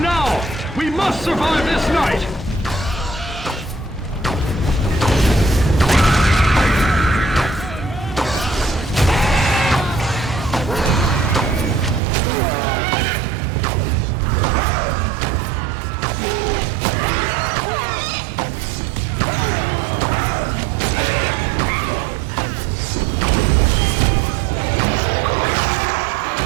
now! We must survive this night!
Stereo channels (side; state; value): left; drops out; at 12.0 s